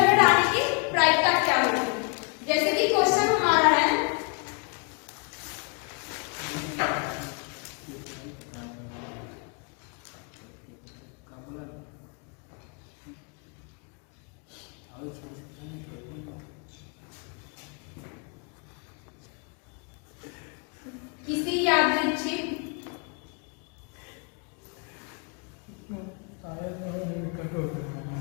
हेड आने की प्रायिकता क्या होगी, जैसे कि क्वेश्चन हमारा है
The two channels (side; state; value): right; quieter; 35.8 dB